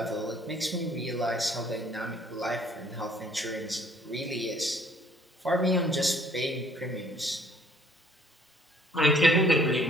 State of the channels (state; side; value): normal; both; correlation 0.59